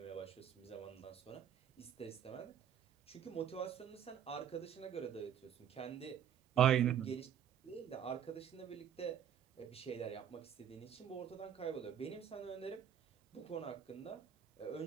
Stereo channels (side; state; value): left; quieter; 9.2 dB